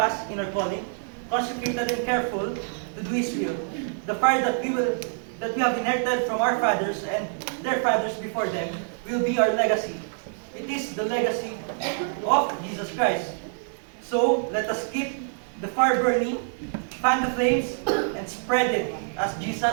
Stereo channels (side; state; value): left; silent; digital silence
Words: in our calling, consecrated and careful to do His will. The fire that we have inherited from our fathers and their fathers before them will be our legacy. It is the legacy of Jesus Christ. So, let us keep the fire burning, fan the flames, and spread it as